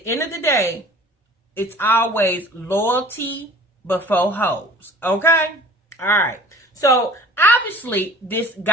end of the day, it's always loyalty before hoes. Okay? All right. So obviously, this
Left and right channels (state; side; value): normal; both; correlation 0.47